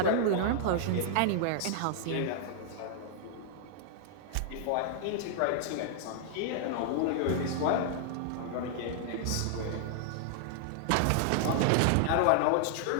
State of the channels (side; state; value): both; different; correlation -0.01